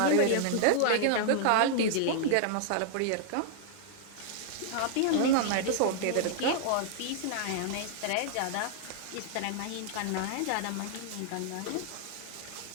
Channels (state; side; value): different; both; correlation -0.01